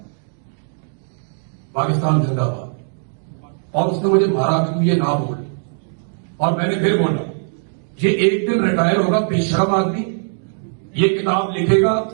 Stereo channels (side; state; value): left; silent; 66 dB below the other